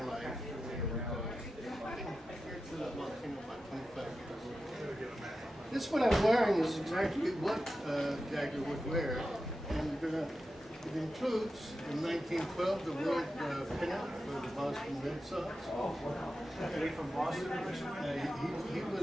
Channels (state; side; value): normal; both; correlation 0.91